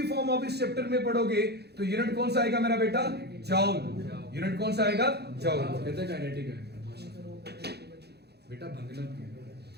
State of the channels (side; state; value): left; late; 0.48 ms